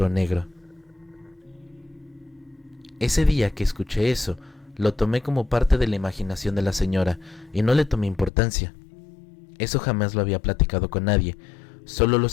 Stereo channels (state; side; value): drops out; right; at 8.3 s